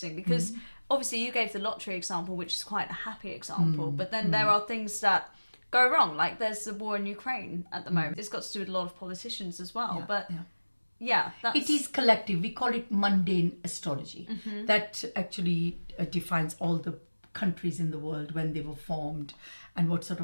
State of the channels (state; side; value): inverted; both; correlation -1.00